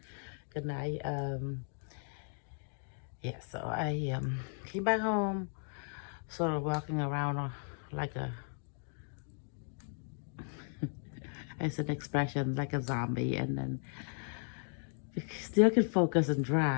good night. Yeah, so I came back home, sort of walking around like a, it's an expression, like a zombie, and then still could focus and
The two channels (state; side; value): silent; right; 54 dB below the other